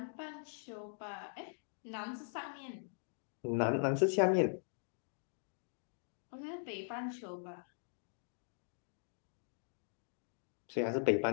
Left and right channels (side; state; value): right; silent; digital silence